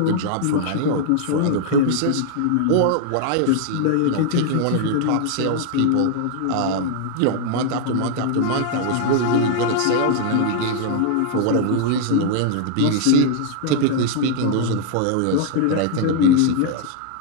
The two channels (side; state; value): both; different; correlation 0.00